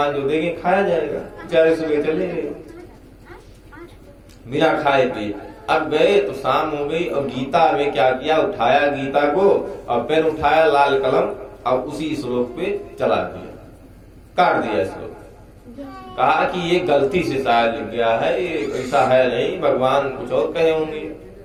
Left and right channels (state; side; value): identical; both; correlation 1.00